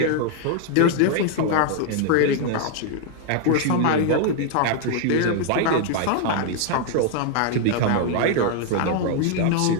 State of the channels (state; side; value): different; both; correlation 0.00